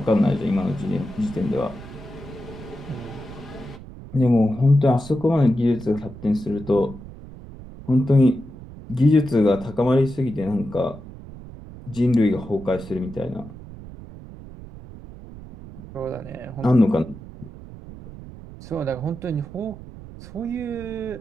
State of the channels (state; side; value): noise; right; rumble, 15 dB below the sound